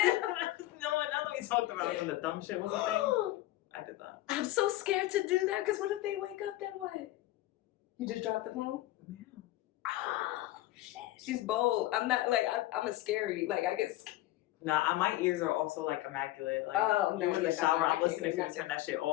No, now that we talked about it when the dumb shit was a thing, I did that. I'm so scared to do that, because what if they wake up, then what? You just dropped the phone? Yeah. Oh, shit. She's bold. I'm not, like, I'm a scary, like, I get scared. Nah, my ears are also, like, immaculate. Like, no, in the shower, I'm listening for you to turn that shit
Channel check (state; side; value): quieter; right; 16.5 dB